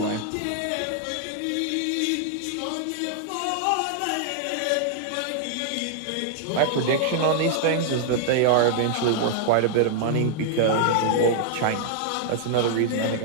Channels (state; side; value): different; both; correlation 0.00